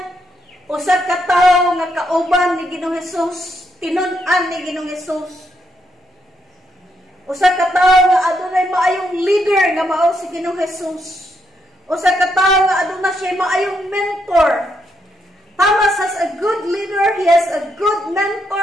usa ka tawo nga kauban ni Ginoong Hesus, tinun-an ni Ginoong Hesus. Usa ka tawo nga adunay maayong leader nga mao si Ginoong Hesus. Usa ka tawo nga aduna siya maayong mentor. Thomas has a good leader, he has a good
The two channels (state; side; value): normal; both; correlation 0.77